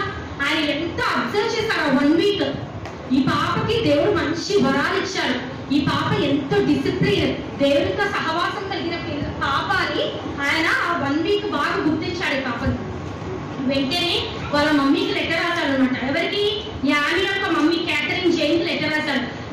ఆయన ఎంత అబ్జర్వ్ చేశారు 1 వీక్. ఈ పాపకి దేవుడు మంచి వరాలు ఇచ్చాడు. ఈ పాప ఎంతో డిసిప్లిన్, దేవునితో సహవాసం కలిగిన పాప అని ఆయన ఆ 1 వీక్ బాగా గుర్తించాడు ఈ పాపని. వెంటనే వాళ్ళ మమ్మీకి లెటర్ రాశాడు అనమాట. ఎవరికి? యాని యొక్క మమ్మీ కేథరిన్ జైన్ లెటర్ రాశాడు.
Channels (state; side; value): identical; both; correlation 1.00